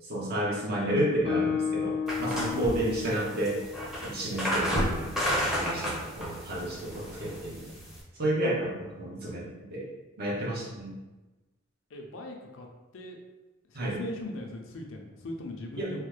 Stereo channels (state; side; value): normal; both; correlation 0.48